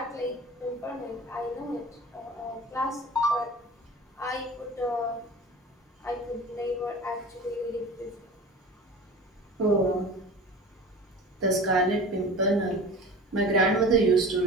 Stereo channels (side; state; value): both; normal; correlation 0.37